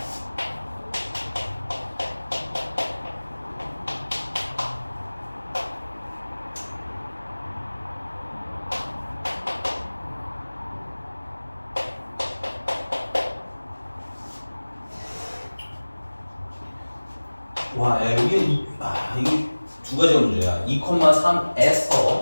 와, 야, 여기 이게 두 가지가 문제야.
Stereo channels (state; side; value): inverted; both; correlation -1.00